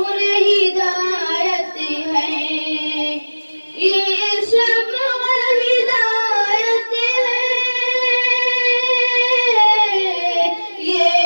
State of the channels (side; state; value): both; inverted; correlation -1.00